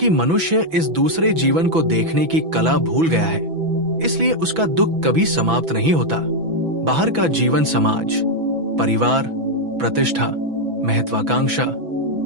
मनुष्य इस दूसरे जीवन को देखने की कला भूल गया है, इसलिए उसका दुख कभी समाप्त नहीं होता। बाहर का जीवन समाज, परिवार, प्रतिष्ठा, महत्वाकांक्षा,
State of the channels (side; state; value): left; late; 6.0 ms